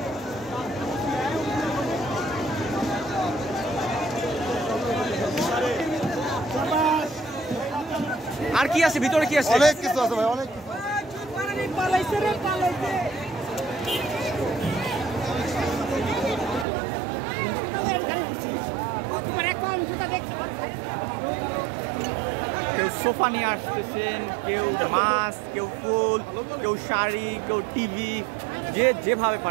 আর কি আছে? ভিতরে কি আছে? অনেক কিছু আছে ভাই, অনেক কিছু। কেউ সোফা নিয়ে আসতেছেন, কেউ মাছ, কেউ ফুল, কেউ শাড়ি, কেউ টিভি, যে যেভাবে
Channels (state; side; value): drops out; left; at 16.7 s